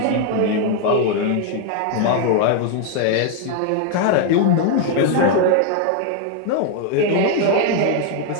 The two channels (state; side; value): different; both; correlation 0.00